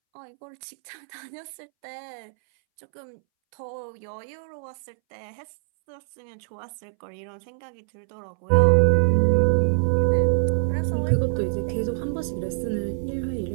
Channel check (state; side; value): silent; left; 62 dB below the other